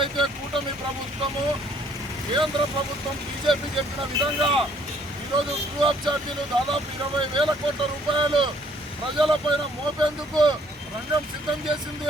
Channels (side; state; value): both; normal; correlation 0.63